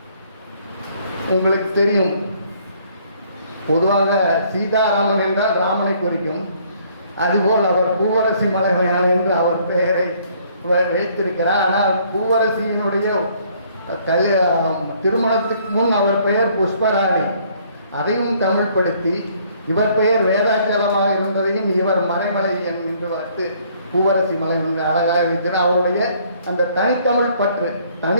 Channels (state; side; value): inverted; both; correlation -0.62